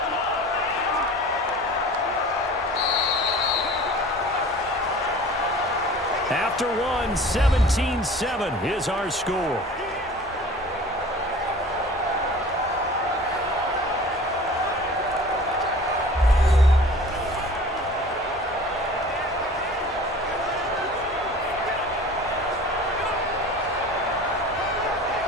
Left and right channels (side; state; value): both; normal; correlation 0.43